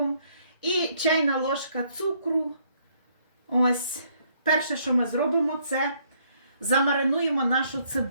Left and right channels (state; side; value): inverted; both; correlation -0.68